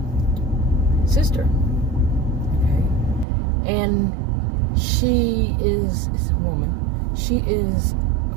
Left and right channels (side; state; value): left; drops out; at 3.2 s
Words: sister, okay? And she is a woman. She is,